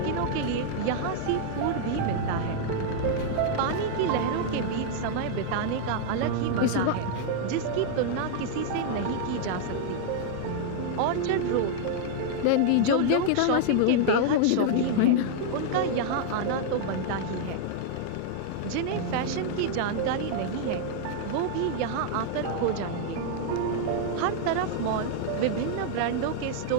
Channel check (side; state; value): both; different; correlation 0.00